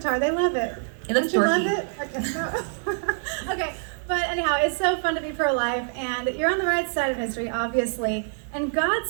They love it. It looks Don't you dorky. love it? Okay. Okay, but anyhow, it's so fun to be pro-life, and you're on the right side of history, obviously, and God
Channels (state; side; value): silent; left; 61 dB below the other